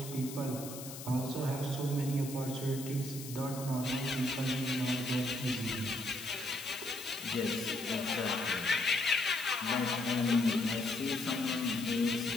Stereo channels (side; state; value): left; noise; hiss, 12 dB below the sound